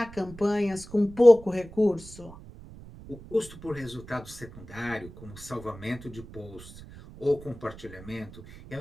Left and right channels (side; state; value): right; noise; rumble, 17 dB below the sound